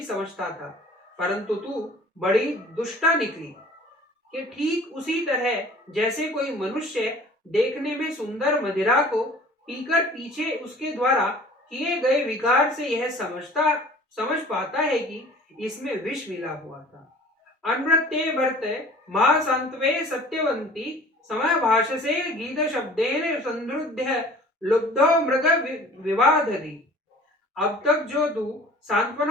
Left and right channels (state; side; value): normal; both; correlation 0.47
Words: समझता था, परंतु तू बड़ी दुष्टा निकली कि ठीक उसी तरह जैसे कोई मनुष्य देखने में सुंदर मदिरा को पीकर पीछे उसके द्वारा किए गए विकार से यह समझ पाता है कि इसमें विष मिला हुआ था। अनृत्ये भर्ते मां संतवे सत्यवंती समय भाषसे गीत शब्देन संद्रुध्य लुब्धो मृग विवादधि। अब तक जो तू